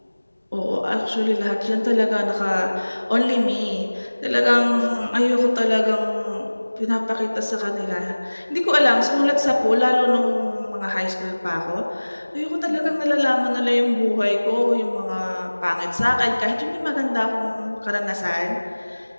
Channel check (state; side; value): inverted; both; correlation -1.00